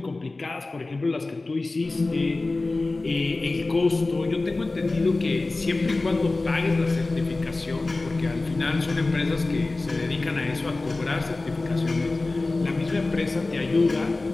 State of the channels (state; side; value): quieter; right; 3.3 dB